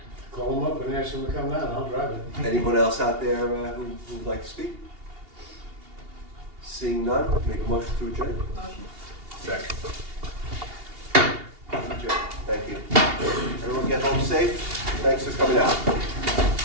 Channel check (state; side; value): late; left; 2.8 ms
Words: Call them up and ask them to come down, I'll drive it. Anyone else out there who'd like to speak? Seeing none, make a motion to adjourn. Motion. Second. Adjourn. Thank you. Everyone get home safe. Thanks for coming out.